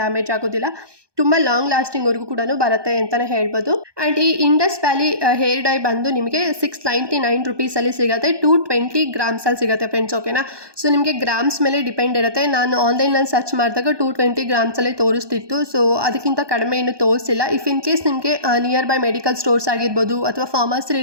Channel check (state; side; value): late; left; 1.2 ms